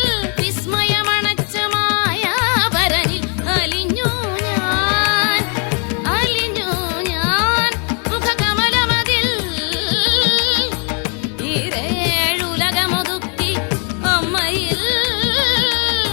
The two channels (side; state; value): right; quieter; 38.6 dB